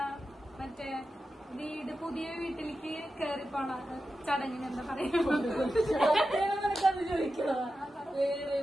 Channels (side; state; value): both; normal; correlation 0.91